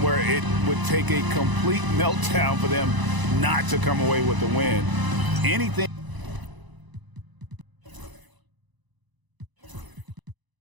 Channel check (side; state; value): left; late; 1.0 ms